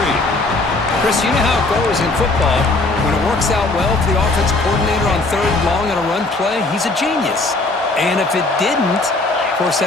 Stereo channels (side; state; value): right; quieter; 3.1 dB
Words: Chris, you know how it goes in football. When it works out well for the offensive coordinator on third and long on a run play, he's a genius. And if it didn't, of course,